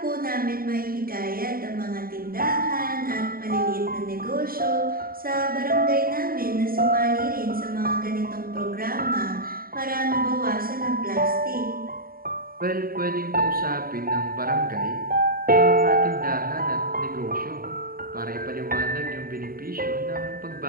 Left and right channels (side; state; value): left; late; 0.43 ms